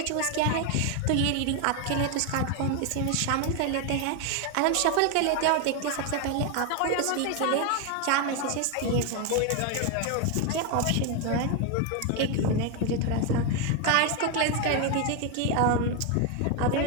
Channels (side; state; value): both; different; correlation 0.01